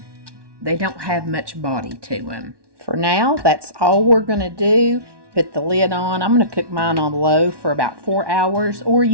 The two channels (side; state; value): left; late; 1.1 ms